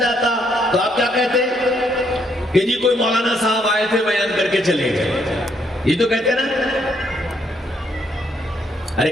تو آپ کیا کہتے کہ جی کوئی مولانا صاحب آئے تھے بیان کر کے چلے گئے؟ یہ تو کہتے نا؟ ارے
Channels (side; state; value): both; normal; correlation 0.72